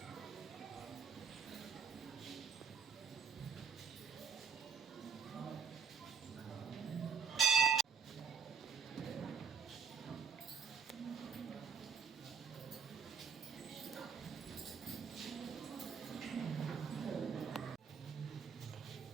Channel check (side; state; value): left; quieter; 6.5 dB